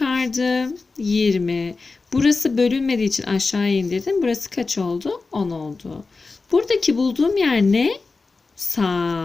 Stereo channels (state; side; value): quieter; right; 4.0 dB